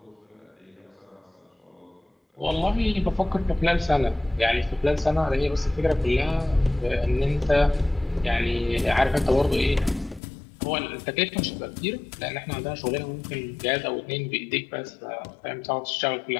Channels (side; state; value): right; drops out; at 10.2 s